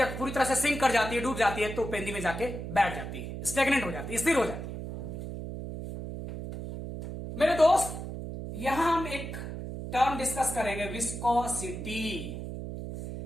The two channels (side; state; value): right; noise; hum, 7 dB below the sound